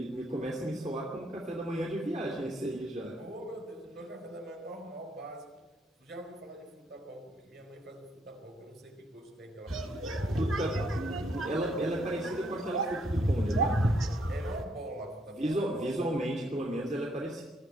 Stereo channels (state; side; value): normal; both; correlation 0.71